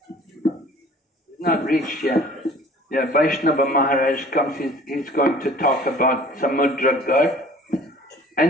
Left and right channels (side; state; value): both; normal; correlation 0.49